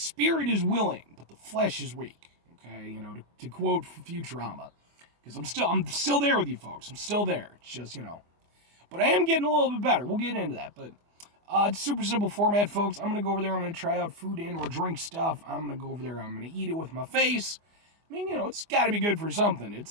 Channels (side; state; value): left; late; 24 ms